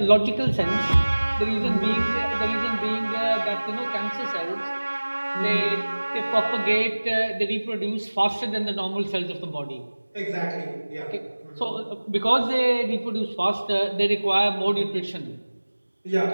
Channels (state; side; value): inverted; both; correlation -1.00